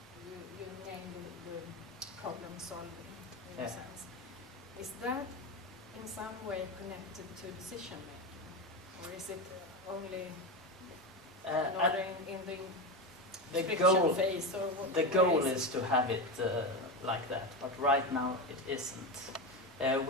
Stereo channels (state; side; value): normal; both; correlation 0.17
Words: named the problem solving in a sense. Is that in some way connected to decision making, or is it only in the friction phase? Or what, the goal is to have it like that, but right now it isn't.